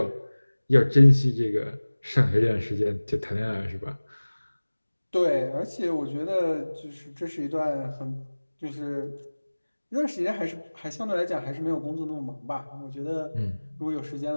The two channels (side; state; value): both; inverted; correlation -1.00